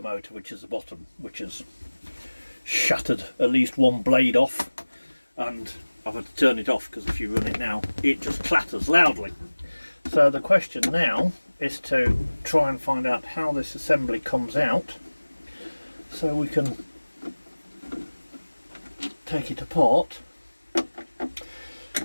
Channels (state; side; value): inverted; both; correlation -1.00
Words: motor, which is the bottom, which has shattered at least one blade off, and I've had to turn it off because if you run it now it just clatters loudly. So the question now is to try and find out how this assembly comes out so we can take it apart,